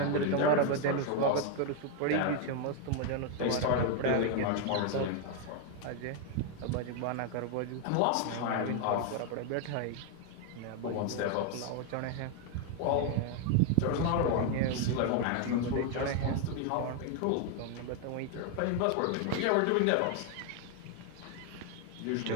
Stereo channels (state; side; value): different; both; correlation 0.01